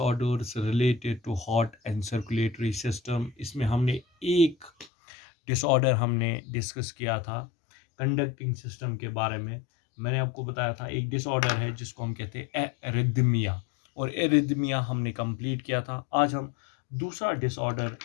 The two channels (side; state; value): right; drops out; at 4.9 s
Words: related to heart and circulatory system. इसमें हमने एक डिसऑर्डर हमने डिस्कस किया था कंडक्टिंग सिस्टम के बारे में। मैंने आपको बताया था एक डिसऑर्डर है जिसको हम कहते हैं एरिथमिया, और एरिथमिया हमने कंप्लीट किया था। आज हम दूसरा डिसऑर्डर